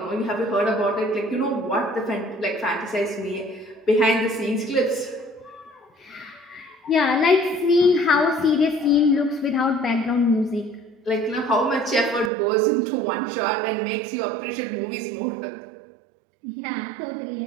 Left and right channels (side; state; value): left; drops out; at 12.3 s